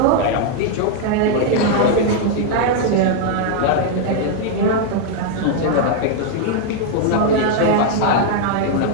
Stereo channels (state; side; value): different; both; correlation 0.00